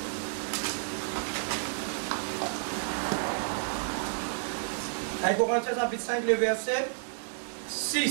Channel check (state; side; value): silent; left; digital silence